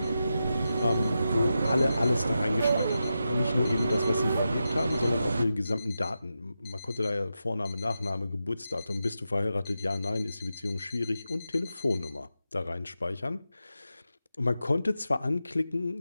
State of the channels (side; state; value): both; inverted; correlation -0.89